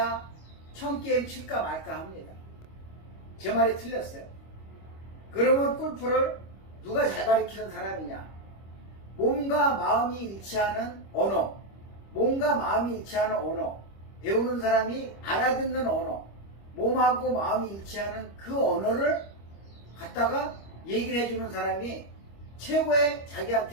1000게임 칠까 말까 합니다. 제 말이 틀렸어요. 그러면 골프를 누가 잘 가르치는 사람이냐? 몸과 마음이 일치하는 언어, 몸과 마음이 일치하는 언어, 배우는 사람이 알아듣는 언어, 몸하고 마음이 일치하는 그 언어를 갖다가 얘기를 해주는 사람이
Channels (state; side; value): late; right; 25 ms